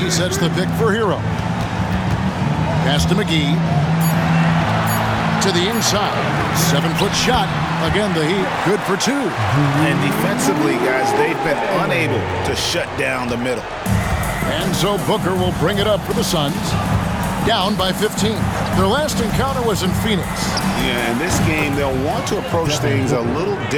sets the pick for Hero. Pass to McGee. To the inside. 7-foot shot. Again, the Heat good for 2. And defensively, guys, they've been unable to shut down the middle. And so Booker will bring it up for the Suns. Down by 15. Their last encounter was in Phoenix. Yeah, in this game, they'll want to approach things a little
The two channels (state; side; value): identical; both; correlation 1.00